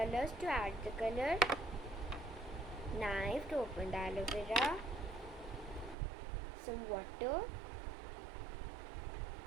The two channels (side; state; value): left; drops out; at 6.0 s